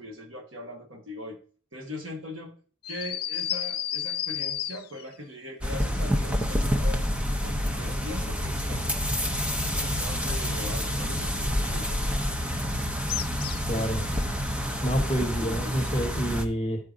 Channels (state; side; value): normal; both; correlation 0.68